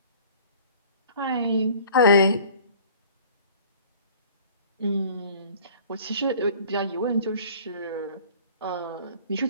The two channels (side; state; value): both; inverted; correlation -0.49